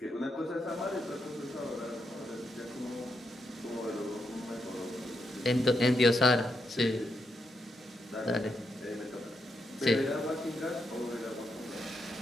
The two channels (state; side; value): normal; both; correlation 0.82